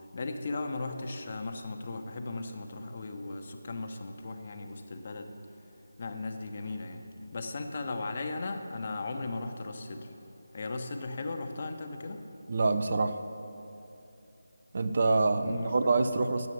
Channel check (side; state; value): both; inverted; correlation -0.90